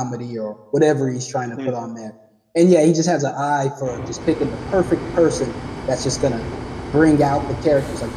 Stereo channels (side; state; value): both; identical; correlation 1.00